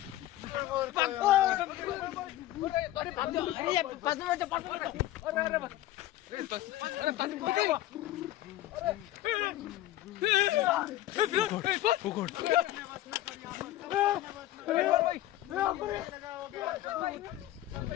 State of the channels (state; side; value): quieter; right; 14.9 dB